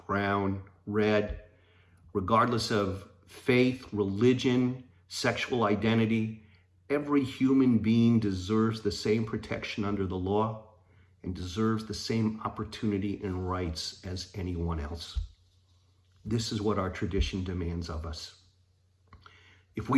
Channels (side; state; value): both; identical; correlation 1.00